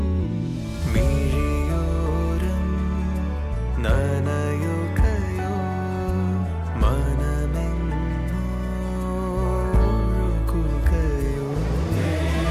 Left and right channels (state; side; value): identical; both; correlation 1.00